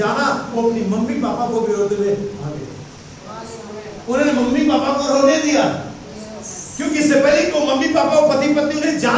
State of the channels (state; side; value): identical; both; correlation 1.00